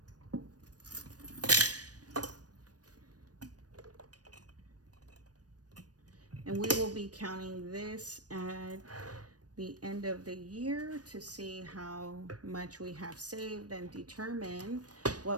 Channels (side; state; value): left; late; 0.68 ms